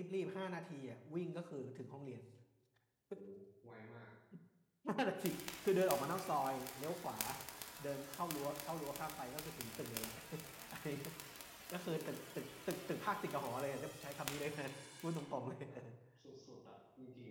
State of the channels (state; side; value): identical; both; correlation 1.00